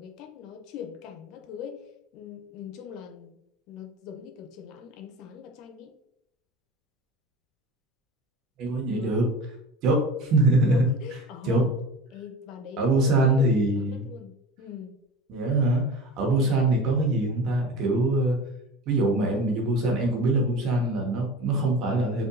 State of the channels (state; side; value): normal; both; correlation 0.35